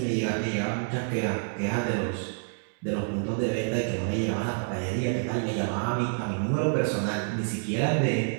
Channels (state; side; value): silent; left; 59 dB below the other